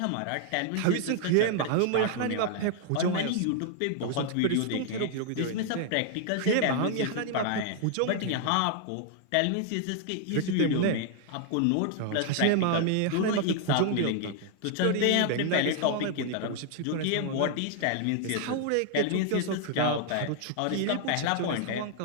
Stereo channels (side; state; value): both; different; correlation 0.00